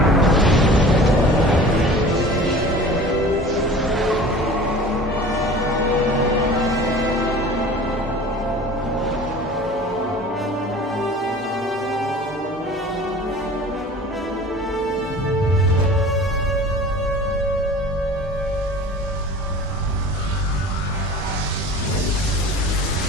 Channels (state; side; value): normal; both; correlation 0.41